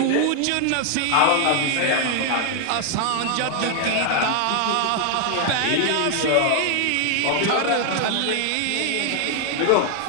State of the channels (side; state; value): both; different; correlation 0.00